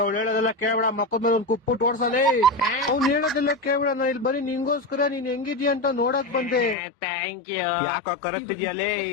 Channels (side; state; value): right; drops out; at 6.8 s